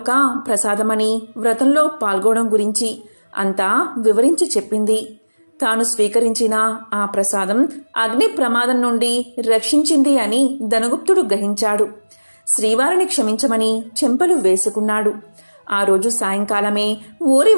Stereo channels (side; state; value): both; inverted; correlation -1.00